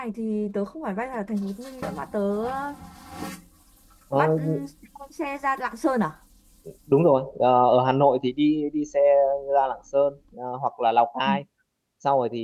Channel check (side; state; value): both; identical; correlation 1.00